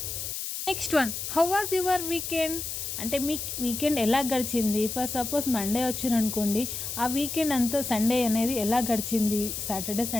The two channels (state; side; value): noise; left; hiss, 5 dB below the sound